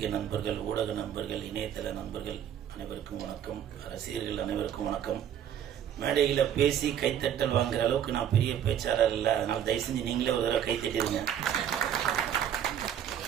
நண்பர்கள், ஊடக நண்பர்கள், இணையதள நண்பர்கள் அனைவருக்கும் வணக்கம். ரசிகர்கள் அனைவருக்கும் வணக்கம். மேடையில பேசி கைத்தட்டல் வாங்குற அளவுக்கு நான் பெரிய பேச்சாளர் இல்லை, அதனால தயவு செஞ்சு நீங்களே ஒரு தடவை கைத்தட்டிருங்க.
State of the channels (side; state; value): left; quieter; 9.8 dB